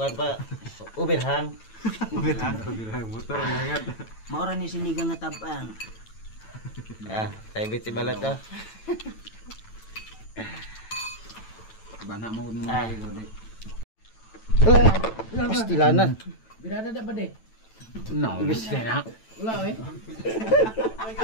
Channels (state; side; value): late; right; 9.0 ms